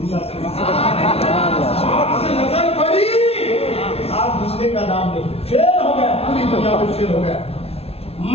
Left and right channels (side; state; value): right; late; 0.29 ms